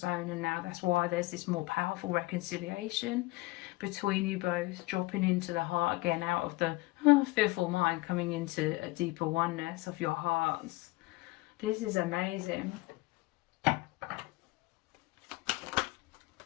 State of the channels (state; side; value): quieter; right; 21.1 dB